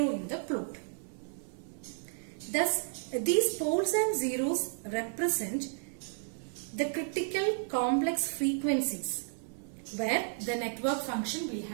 in the plot. Thus, these poles and zeros represent the critical complex frequencies where the network function will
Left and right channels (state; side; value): silent; left; digital silence